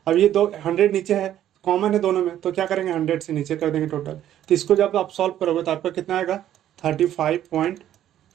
अब ये 100 नीचे है, कॉमन है दोनों में, तो क्या करेंगे 100 से नीचे कर देंगे टोटल। तो इसको जब आप सॉल्व करोगे तो आपका कितना आएगा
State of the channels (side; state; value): left; quieter; 11.6 dB